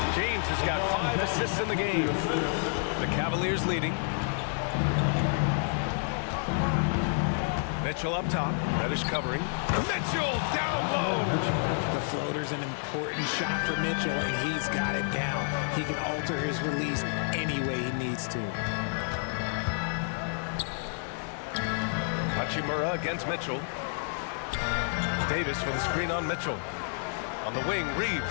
James has got 5 assists in the game. The Cavaliers leading. Mitchell up top. Reddish covering. Mitchell down low. The floater's an important shot for Mitchell, and he's got it down. He can alter his release any way he needs to. Hachimura against Mitchell. Davis with a screen on Mitchell. On the wing,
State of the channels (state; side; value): silent; right; 58 dB below the other